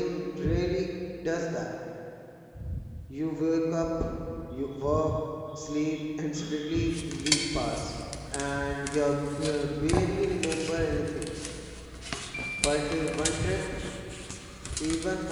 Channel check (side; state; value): both; identical; correlation 1.00